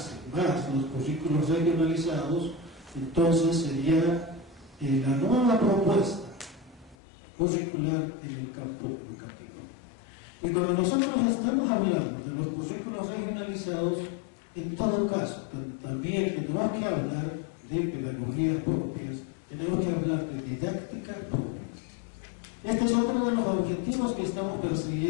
más los currículos regionalizados, entonces sería la nueva propuesta curricular en el campo educativo. Y cuando nosotros estamos hablando de los currículos regionalizados, en todo caso, también tenemos que hablar de pedagogías propias, tenemos que hablar de didáctica propia. Este es otro de los objetivos que estamos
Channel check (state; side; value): drops out; right; at 7.0 s